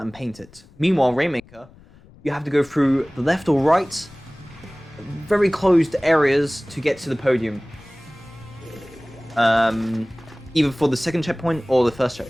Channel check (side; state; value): left; noise; rumble, 24 dB below the sound